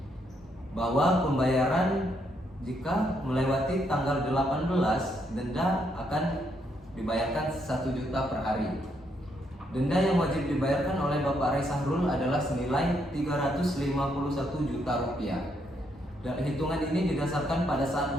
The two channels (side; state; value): both; normal; correlation 0.75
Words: Bahwa pembayaran jika melewati tanggal 18, denda akan dibayarkan 1 juta per hari. Denda yang wajib dibayarkan oleh Bapak Rai Sahrul adalah senilai 351 juta rupiah. Dan hitungan ini didasarkan pada saat